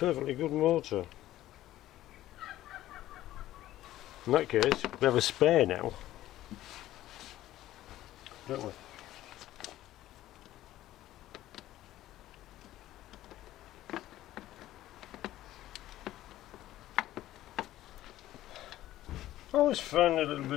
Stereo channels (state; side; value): quieter; right; 14.4 dB